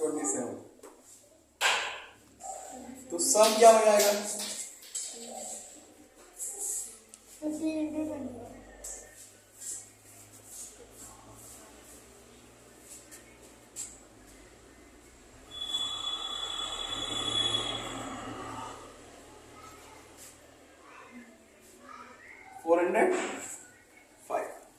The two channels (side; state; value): both; identical; correlation 1.00